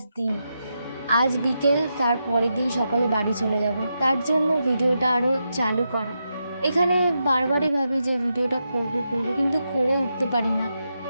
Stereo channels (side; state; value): both; inverted; correlation -0.86